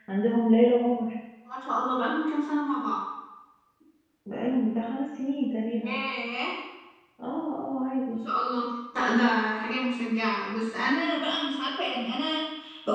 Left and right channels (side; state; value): both; identical; correlation 1.00